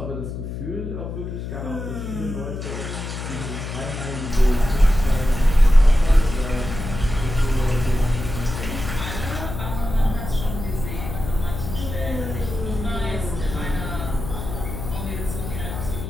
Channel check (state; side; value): noise; left; hum, 6 dB below the sound